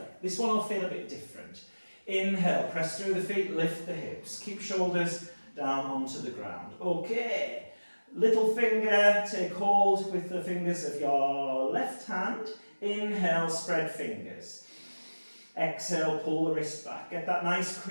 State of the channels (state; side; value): inverted; both; correlation -1.00